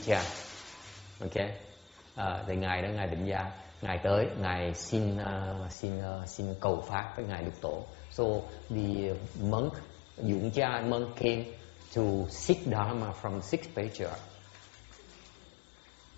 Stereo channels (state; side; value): drops out; right; at 5.8 s